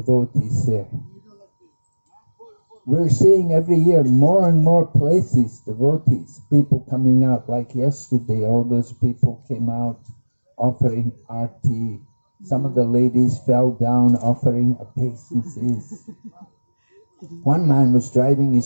there. We're seeing every year more and more places, devotees, people coming out. Like yesterday, all those people came out offering arti. Some of the ladies fell down offering obeisances. One man was driving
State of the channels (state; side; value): inverted; both; correlation -1.00